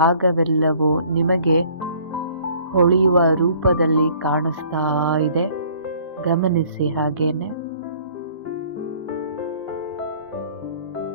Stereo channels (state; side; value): inverted; both; correlation -0.56